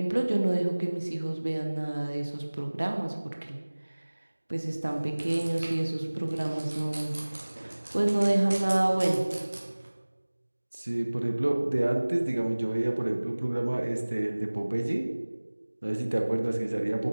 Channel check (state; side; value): inverted; both; correlation -1.00